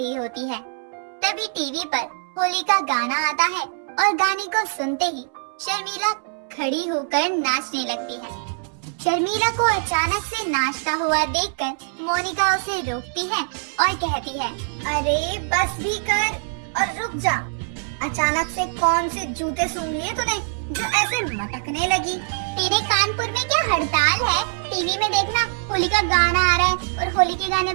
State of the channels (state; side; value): silent; left; 63 dB below the other